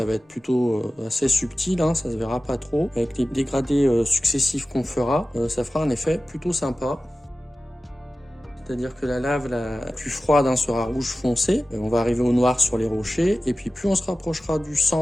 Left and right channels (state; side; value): normal; both; correlation 0.95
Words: va être plutôt assez subtil, ça se verra pas trop. Avec les dégradés successifs qu'on fera, ça fera un effet plutôt sympa. C'est-à-dire que la lave la plus froide sera rouge foncé, on va arriver au noir sur les rochers, et puis plus on se rapprochera du